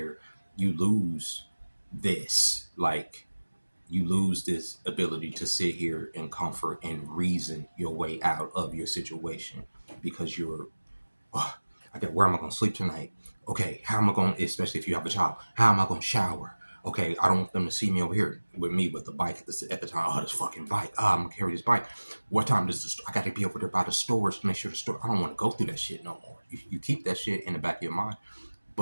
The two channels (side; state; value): both; inverted; correlation -1.00